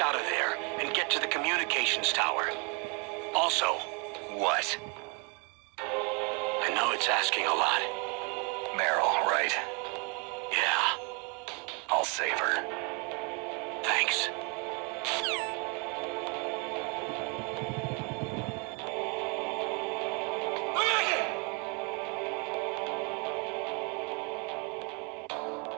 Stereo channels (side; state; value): left; quieter; 33.3 dB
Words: out of there and get to the communications tower. Also... What? I know it's asking a lot. Meryl, right? Yeah. I'll save her. Thanks.